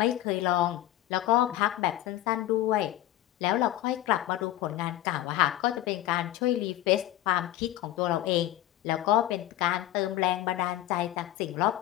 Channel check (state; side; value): quieter; right; 14.4 dB